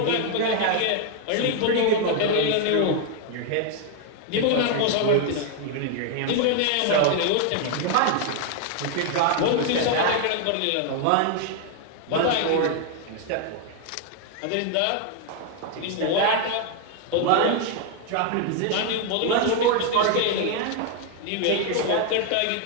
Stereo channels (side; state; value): both; different; correlation 0.00